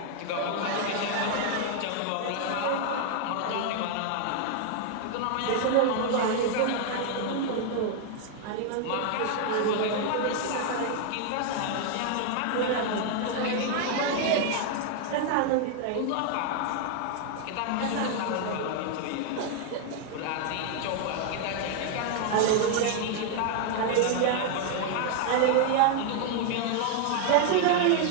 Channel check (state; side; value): different; both; correlation 0.00